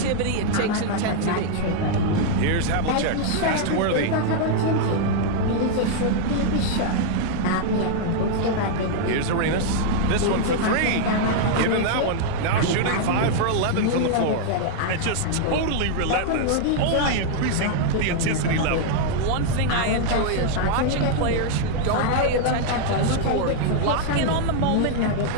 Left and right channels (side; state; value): both; different; correlation -0.01